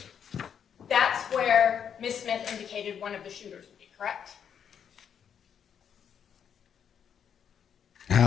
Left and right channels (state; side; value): quieter; right; 8.1 dB